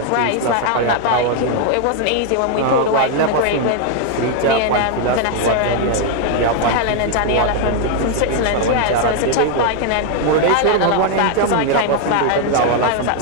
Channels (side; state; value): both; different; correlation 0.00